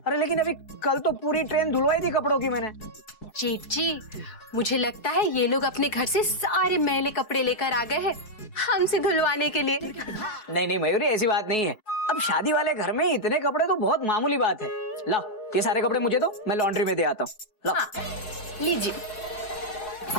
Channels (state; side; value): late; right; 4.7 ms